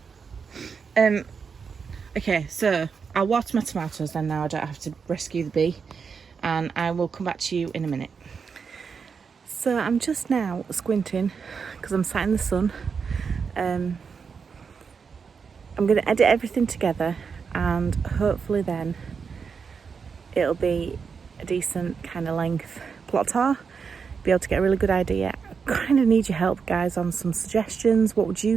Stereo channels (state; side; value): quieter; left; 5.9 dB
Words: Okay, so I'll water my tomatoes then now. I don't have to rescue the bee, and I will come back to you in a minute. So I'm just now squinting because I'm sat in the sun. I'm going to edit everything together, and hopefully then it'll be a decent kind of length plot tour. Be able to get a really good idea. I kind of need your help, guys, on some suggestions. What would